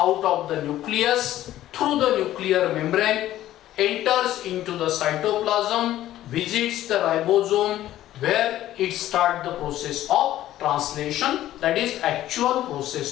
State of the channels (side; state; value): right; quieter; 13.6 dB